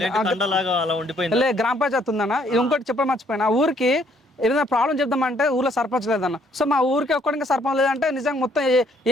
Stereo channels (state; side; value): normal; both; correlation 0.66